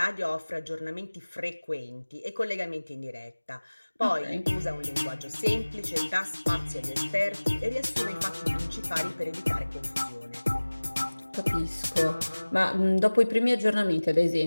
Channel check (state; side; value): inverted; both; correlation -1.00